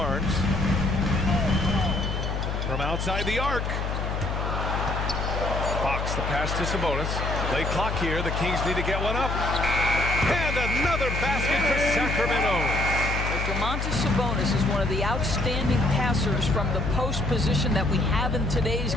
From outside the arc. Fox, the pass to Sabonis. Late clock here. The Kings need to get one up. And another basket for Sacramento. Domantas Sabonis is one of the outstanding passers from the post position that we have in today's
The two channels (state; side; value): noise; left; hum, 2 dB below the sound